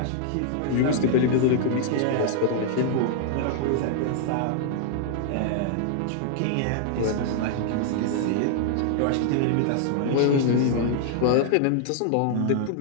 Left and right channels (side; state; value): both; different; correlation -0.01